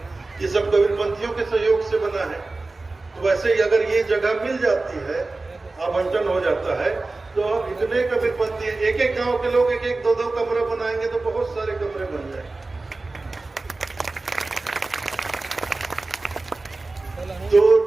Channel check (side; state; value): left; quieter; 3.4 dB